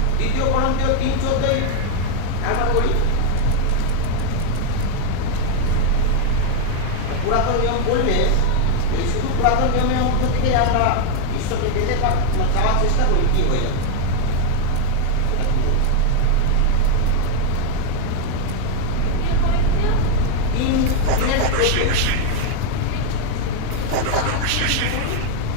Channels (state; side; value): different; both; correlation 0.00